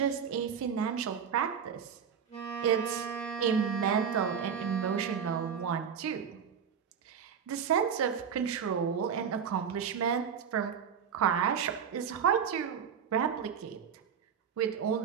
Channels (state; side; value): quieter; left; 7.4 dB